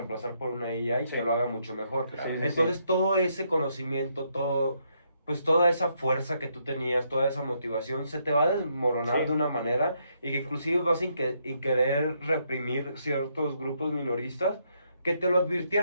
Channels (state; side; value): inverted; both; correlation -0.75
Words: por una AI Sí. que lo haga mucho mejor. Sí, sí, Entonces sí. todo ese conocimiento, pues toda esa fuerza que tú tenías, toda esa motivación, se te va a desmoronar Sí. de una manera y que inclusive vas a querer reprimir ciertos grupos minoristas que te lo